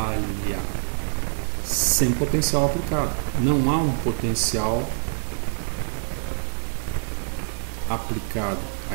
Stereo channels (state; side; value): silent; left; 62 dB below the other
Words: sem potencial aplicado. Não há um potencial aplicado